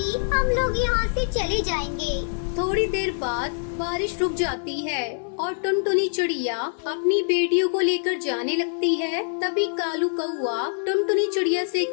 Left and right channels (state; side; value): silent; right; 58 dB below the other